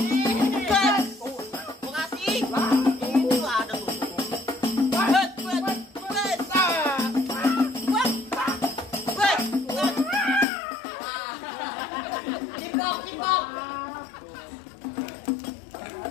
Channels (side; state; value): right; drops out; at 10.5 s